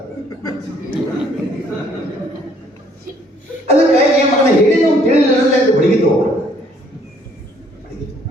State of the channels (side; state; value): both; normal; correlation 0.63